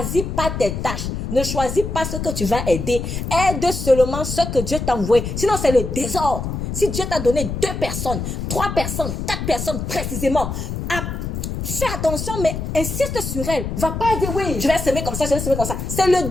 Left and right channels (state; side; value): noise; left; rumble, 4 dB below the sound